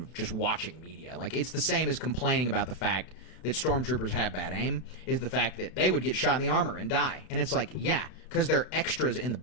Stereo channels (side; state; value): right; late; 32 ms